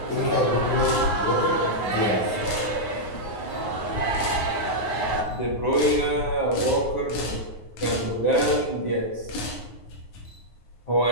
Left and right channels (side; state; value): right; late; 9.5 ms